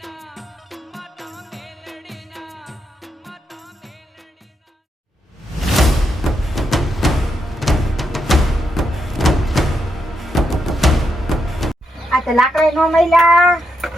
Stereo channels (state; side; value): normal; both; correlation 0.82